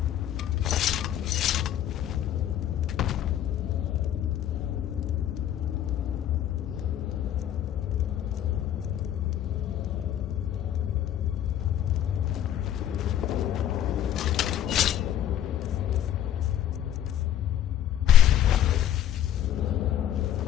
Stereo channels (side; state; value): right; quieter; 11.1 dB